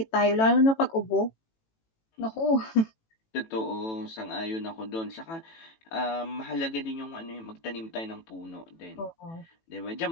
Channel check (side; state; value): right; late; 18 ms